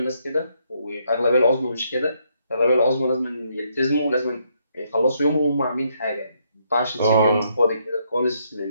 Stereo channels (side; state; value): both; inverted; correlation -0.74